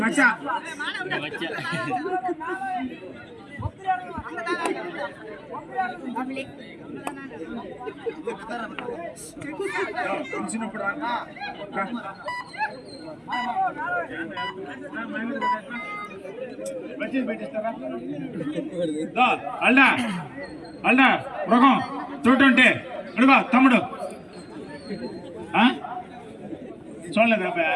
మచ్చా. తెలిసినప్పుడు అల్డా మృగం 220 అడుగా తమ్ముడు. చూడలేదు అబ్బాయి,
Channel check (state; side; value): identical; both; correlation 1.00